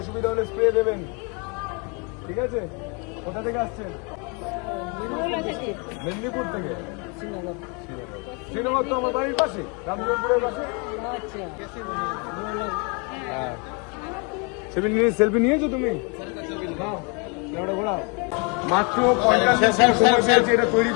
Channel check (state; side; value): quieter; right; 33.4 dB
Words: হলে স্প্রে দেবেন, ঠিক আছে? কোথা থেকে আসছেন? মেদিনীপুর থেকে। শ্রীনগর তো আমার বাড়ির পাশে, রামজীবনপুরের পাশে। হ্যাঁ সেলফি নিয়েছো তুমি? ঘোরাও। মাত্র 50 মিনিট সময় পেয়েছি এটা তৈরি